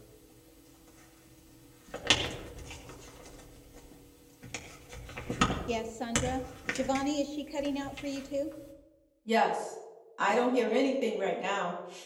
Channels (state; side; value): identical; both; correlation 1.00